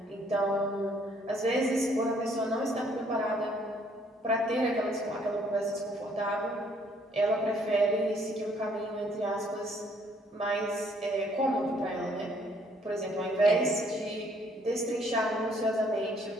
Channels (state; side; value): normal; both; correlation 0.64